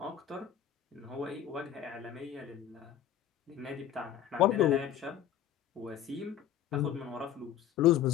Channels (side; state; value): right; quieter; 10.5 dB